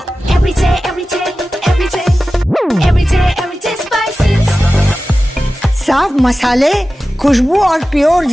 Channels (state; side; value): normal; both; correlation 0.95